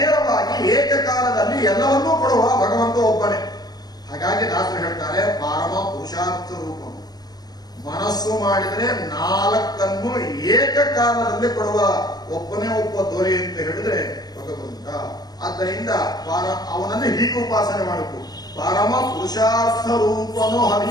ಏಕಕಾಲದಲ್ಲಿ ಎಲ್ಲವನ್ನೂ ಕೊಡುವ ಭಗವಂತ ಒಬ್ಬನೇ. ಹಾಗಾಗಿ ದಾಸರು ಹೇಳ್ತಾರೆ ಪರಮ ಪುರುಷಾರ್ಥ ರೂಪ. ಮನಸ್ಸು ಮಾಡಿದರೆ 4 ಏಕಕಾಲದಲ್ಲಿ ಕೊಡುವ ಒಬ್ಬನೇ ಒಬ್ಬ ದೊರೆ ಅಂತ ಹೇಳಿದ್ರೆ ಭಗವಂತ. ಆದ್ದರಿಂದ ಅವನನ್ನು ಹೀಗೆ ಉಪಾಸನೆ ಮಾಡಬೇಕು. ಪರಮ ಪುರುಷಾರ್ಥ ರೂಪನು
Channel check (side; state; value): right; late; 0.19 ms